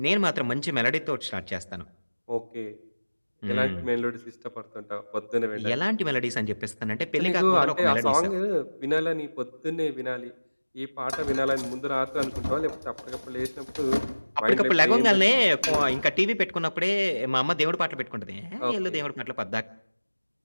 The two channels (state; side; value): inverted; both; correlation -1.00